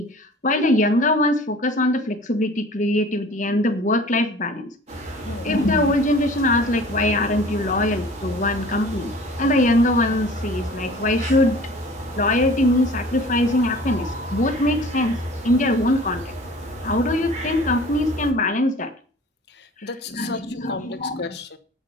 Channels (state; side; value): normal; both; correlation 0.46